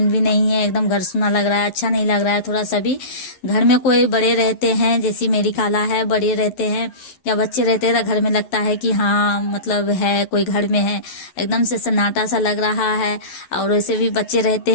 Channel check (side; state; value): right; late; 11 ms